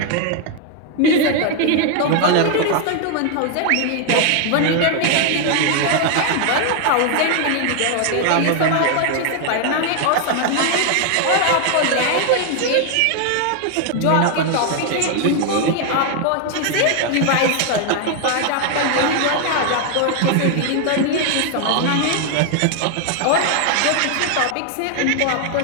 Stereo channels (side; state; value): both; different; correlation 0.00